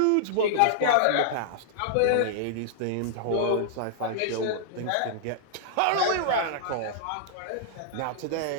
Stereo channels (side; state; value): both; different; correlation -0.01